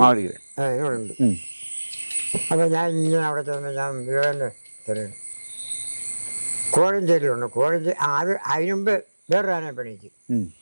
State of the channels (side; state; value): both; inverted; correlation -1.00